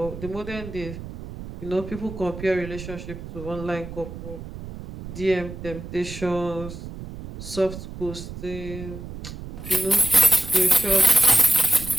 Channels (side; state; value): right; noise; rumble, 11 dB below the sound